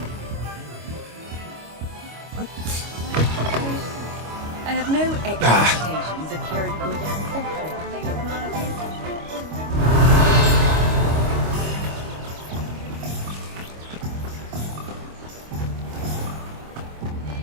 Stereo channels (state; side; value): late; left; 25 ms